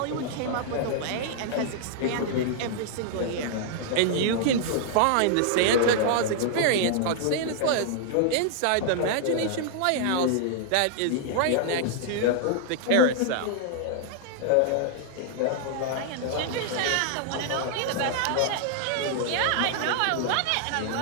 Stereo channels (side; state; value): both; different; correlation -0.01